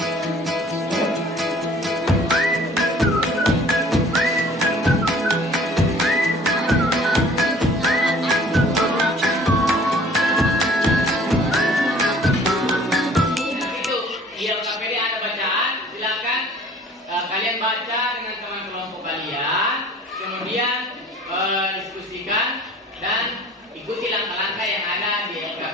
kemudian diskusikan dan ikuti langkah-langkah yang ada di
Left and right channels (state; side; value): normal; both; correlation 0.51